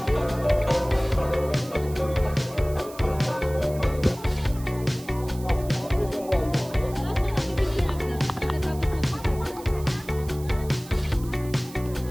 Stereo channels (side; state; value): right; noise; hiss, 19 dB below the sound